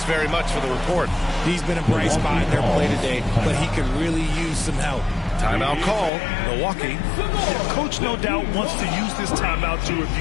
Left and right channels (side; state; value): right; drops out; at 6.1 s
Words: very much for the report. He's been a bright spot in their play today, but he could really use some help. Timeout call, Milwaukee. Coach no doubt wants to use this timeout to